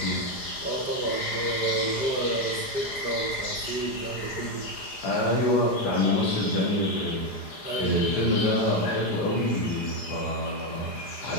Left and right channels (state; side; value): late; right; 4.9 ms